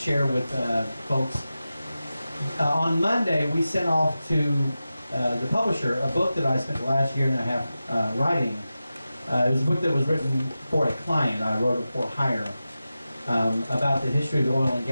with folks. On Monday, we sent off to the publisher a book that I spent the last year and a half writing. It was a book that was written for a client. I wrote it for hire about the history of the oil and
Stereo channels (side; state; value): both; inverted; correlation -0.93